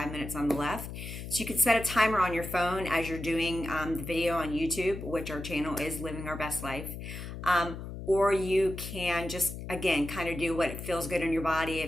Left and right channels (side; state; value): left; noise; hum, 9 dB below the sound